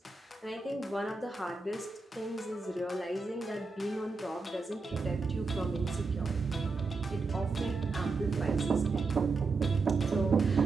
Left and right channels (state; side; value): quieter; left; 4.0 dB